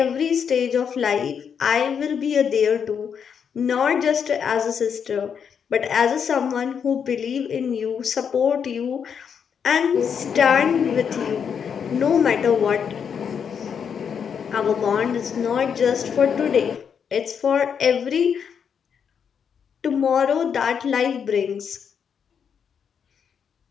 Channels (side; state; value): right; quieter; 7.2 dB